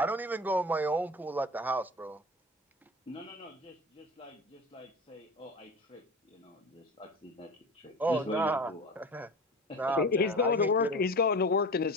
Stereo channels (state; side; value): normal; both; correlation 0.32